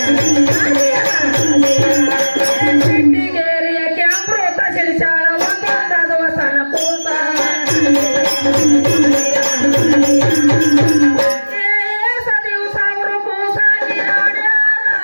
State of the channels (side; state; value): both; inverted; correlation -1.00